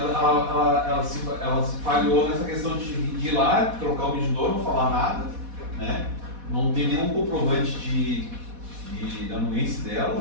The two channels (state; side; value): late; left; 4.1 ms